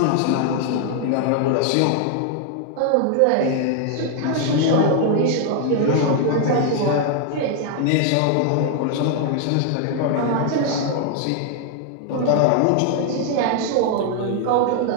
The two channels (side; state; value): both; different; correlation 0.00